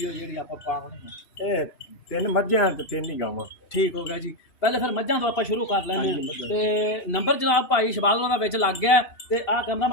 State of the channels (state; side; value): late; right; 2.8 ms